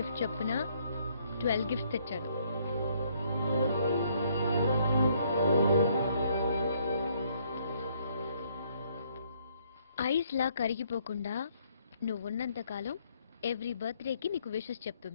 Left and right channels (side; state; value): both; inverted; correlation -0.68